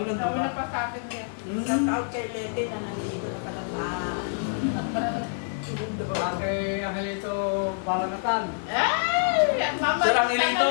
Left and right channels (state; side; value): silent; right; 59 dB below the other